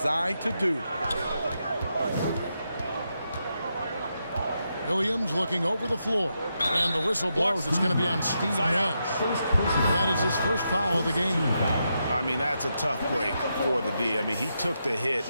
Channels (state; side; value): inverted; both; correlation -0.84